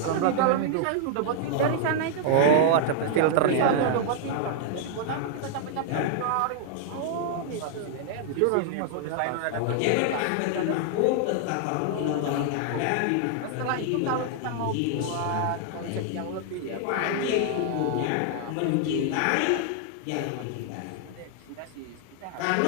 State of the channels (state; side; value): different; both; correlation -0.01